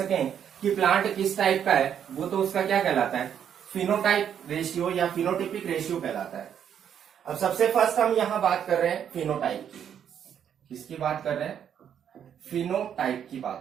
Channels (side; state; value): left; quieter; 8.8 dB